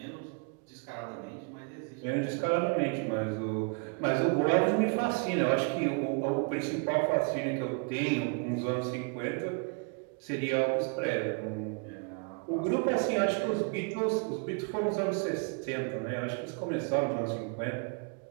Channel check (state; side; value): quieter; left; 34.9 dB